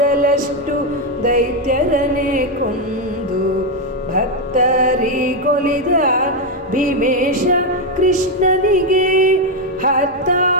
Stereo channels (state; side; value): normal; both; correlation 0.04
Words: ದೈತ್ಯರನೆ ಕೊಂದು ಭಕ್ತರಿಗೊಲಿದ ಭೀಮೇಶ ಕೃಷ್ಣನಿಗೆ